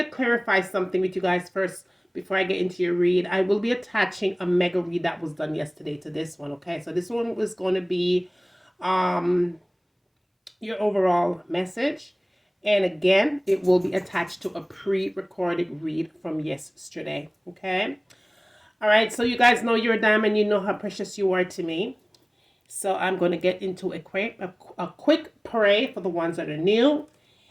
clarify something with you guys first before I get into your read. I will be attaching a mega read that was done yesterday to this one, okay? So this one was going to be your overall message. And again, it will be attached to a pre-recorded read from yesterday, okay? All right, so you guys know you're a diamond. You know how precious you are to me. So I'm going to get into a quick pray for the ones that are new.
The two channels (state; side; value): identical; both; correlation 1.00